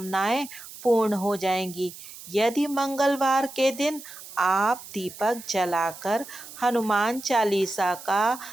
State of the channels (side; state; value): right; noise; hiss, 15 dB below the sound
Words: पूर्ण हो जाएंगी। यदि मंगलवार के दिन आप दीपक जलाकर हनुमान चालीसा का